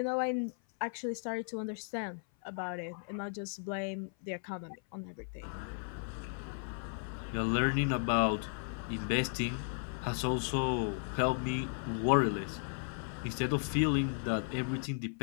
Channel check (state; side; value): silent; right; 54 dB below the other